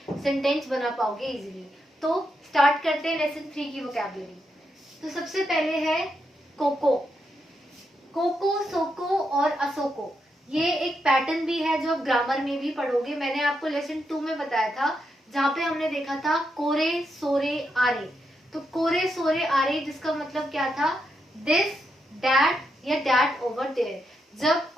सेंटेंस बना पाओगे इजीली। तो स्टार्ट करते हैं लेसन 3 की वोकैबुलरी। तो सबसे पहले है कोको। कोको, सोको और असोको, ये एक पैटर्न भी है जो आप ग्रामर में भी पढ़ोगे। मैंने आपको लेसन 2 में बताया था, जहाँ पे हमने देखा था कोरे सोरे आरे। तो कोरे सोरे आरे जिसका मतलब क्या था, दिस, दैट या दैट ओवर देयर। जब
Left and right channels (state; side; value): normal; both; correlation 0.82